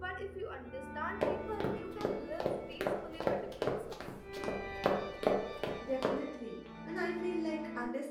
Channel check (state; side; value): identical; both; correlation 1.00